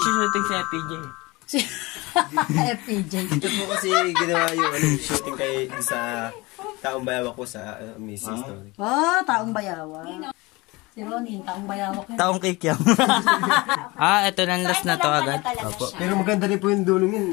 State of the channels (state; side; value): quieter; right; 23.2 dB